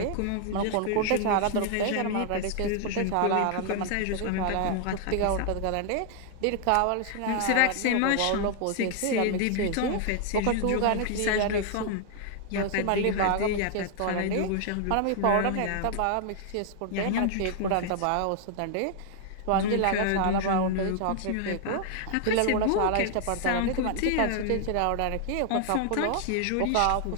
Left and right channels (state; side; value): different; both; correlation 0.00